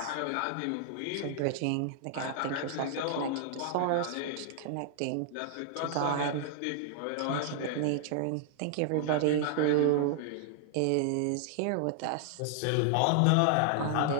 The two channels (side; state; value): both; different; correlation -0.01